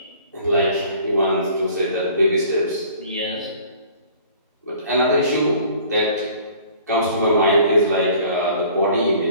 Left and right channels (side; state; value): both; inverted; correlation -0.51